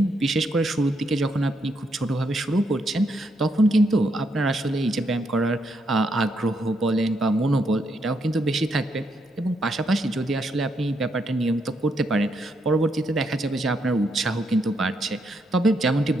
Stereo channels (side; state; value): both; normal; correlation 0.78